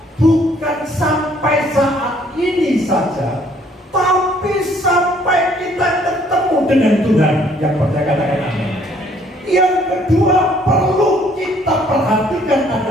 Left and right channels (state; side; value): normal; both; correlation 0.62